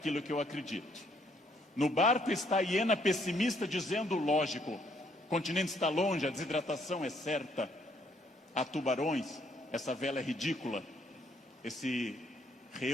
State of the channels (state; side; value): normal; both; correlation 0.68